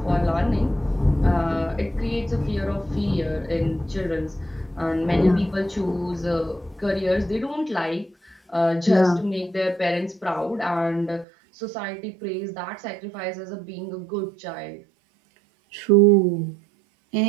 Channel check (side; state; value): left; drops out; at 11.2 s